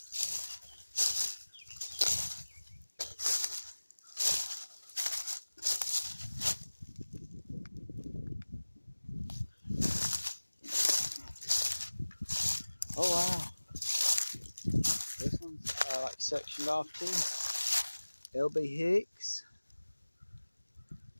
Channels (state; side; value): inverted; both; correlation -1.00